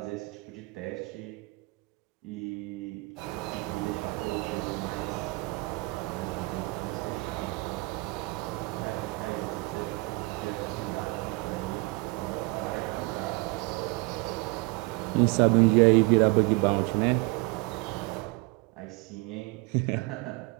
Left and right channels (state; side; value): quieter; left; 25.8 dB